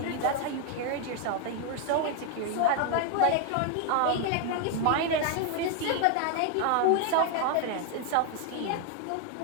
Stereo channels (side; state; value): both; different; correlation 0.00